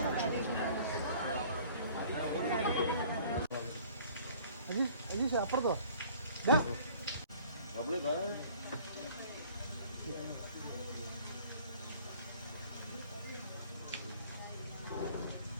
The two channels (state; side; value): inverted; both; correlation -0.51